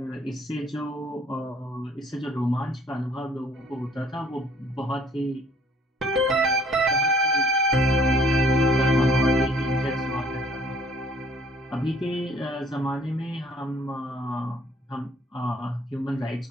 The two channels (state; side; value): normal; both; correlation 0.59